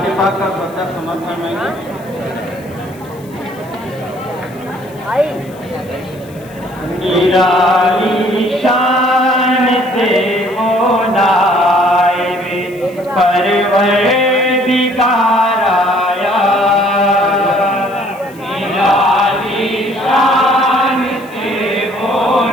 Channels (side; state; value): left; noise; hiss, 25 dB below the sound